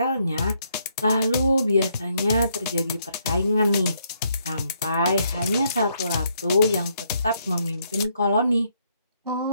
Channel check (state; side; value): inverted; both; correlation -0.73